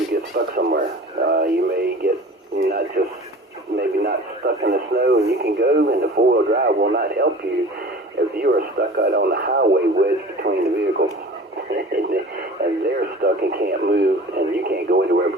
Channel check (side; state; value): both; normal; correlation 0.41